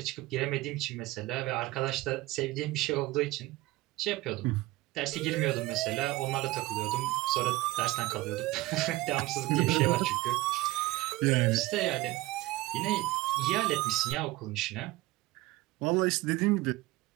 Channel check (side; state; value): left; quieter; 19.2 dB